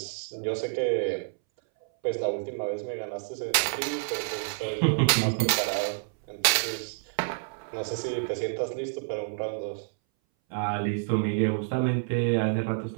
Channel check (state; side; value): silent; left; 59 dB below the other